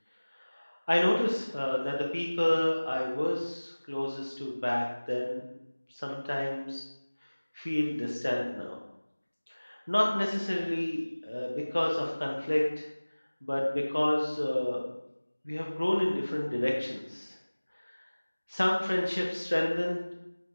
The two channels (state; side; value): inverted; both; correlation -1.00